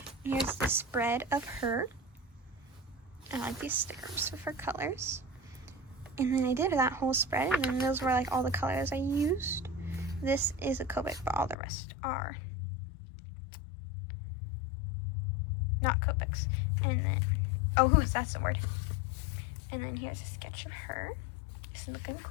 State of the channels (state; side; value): drops out; right; at 11.6 s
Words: Here's the spread of her. I like these stickers with her colors. And then I did that whole spread, and then those were like all the colors I used. This is a Copic, but all the rest are not Copics. And then, that's the word. And then here's a sketch of her. This is looking